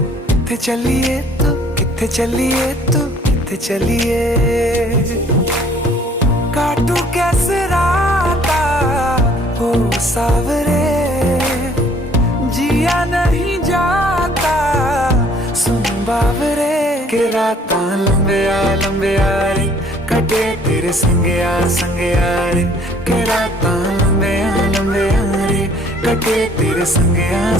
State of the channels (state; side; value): normal; both; correlation 0.58